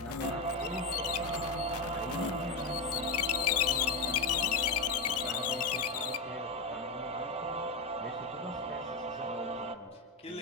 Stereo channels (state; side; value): quieter; right; 3.5 dB